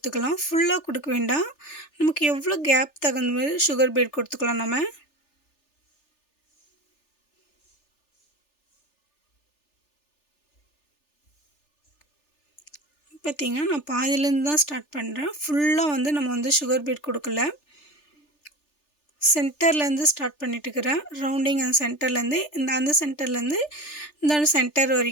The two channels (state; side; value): late; right; 3.4 ms